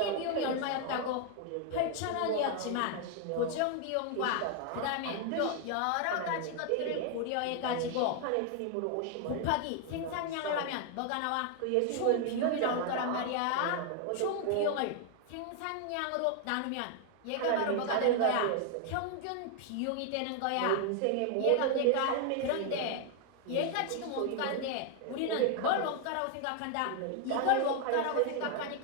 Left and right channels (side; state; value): both; different; correlation 0.00